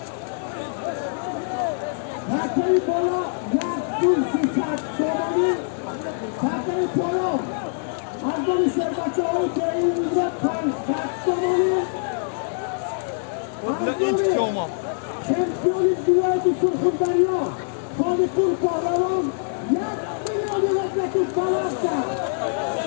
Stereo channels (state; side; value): silent; right; digital silence